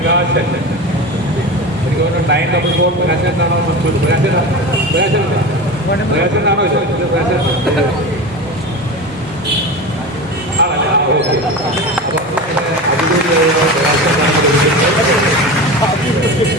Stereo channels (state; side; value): noise; left; hum, 27 dB below the sound